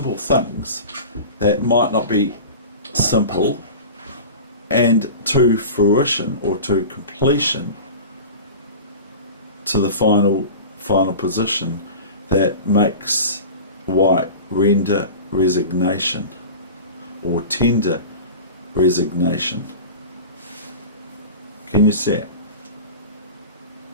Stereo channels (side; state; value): both; inverted; correlation -0.33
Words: things that might not be simple, and to fruition, or to completion, to the final position that makes white render resignation or tender resignation. Can you see it?